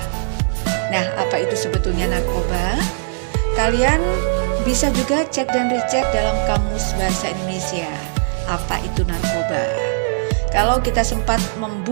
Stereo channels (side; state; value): left; silent; 66 dB below the other